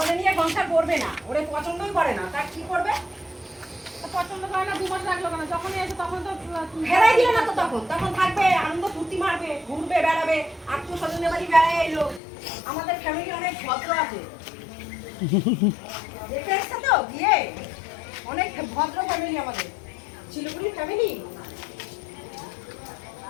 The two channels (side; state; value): right; drops out; at 12.2 s